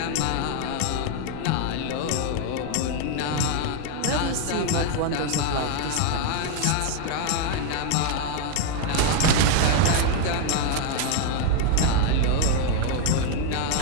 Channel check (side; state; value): both; different; correlation 0.00